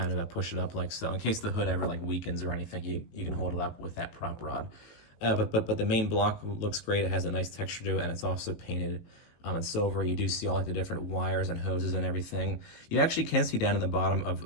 kind of push it up like so. In case the hood ever like weakens or anything, you can hold it up with that prop rod. But the main block looks great. It has a nice texture to it, and it's also painted in silver. You do see all like the different wires and hoses and everything. You actually can see down in the bottom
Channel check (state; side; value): late; right; 18 ms